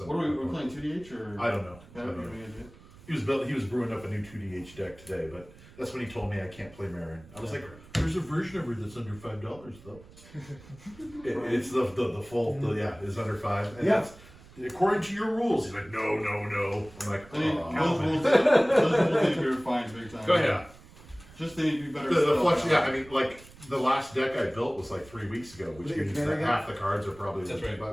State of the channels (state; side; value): noise; right; rumble, 22 dB below the sound